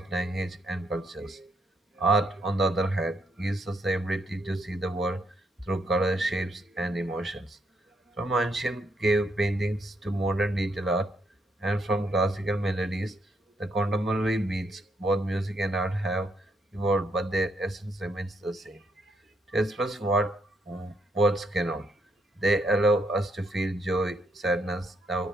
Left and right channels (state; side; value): normal; both; correlation 0.75